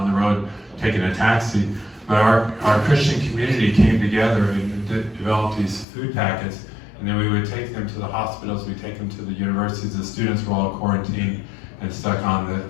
the road taking a taxi. But our Christian community came together and developed these food packets. And then we would take them to the hospitals, we'd take them to the universities. The students were all quarantined and stuck on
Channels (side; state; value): right; drops out; at 5.9 s